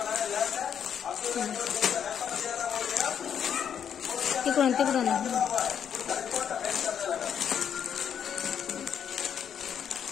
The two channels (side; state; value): right; quieter; 8.3 dB